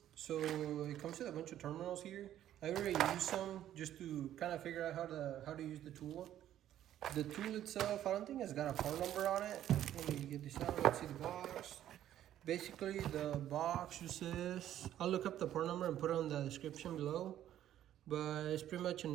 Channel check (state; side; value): quieter; left; 11.8 dB